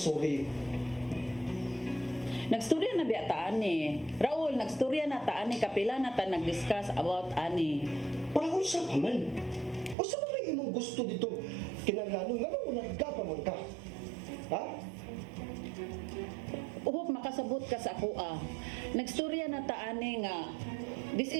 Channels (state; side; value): drops out; left; at 10.0 s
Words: sorry? Nagstorya na biya ta ani. Raul, nagstorya na ta ani. Kapila na ta nag-discuss about ani. Parang kung sa paman. O sa mga imong gusto dito? Kinaglanong nga mo nagkapaman ka. Ha? Uhop makasabot ka sa ako ah. Nagstorya na ta ani nga. This